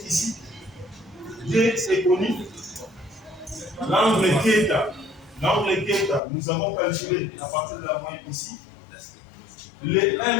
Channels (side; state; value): right; drops out; at 6.2 s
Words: ici. D est connu. L'angle θ, nous avons calculé à partir de la moyenne ici. Le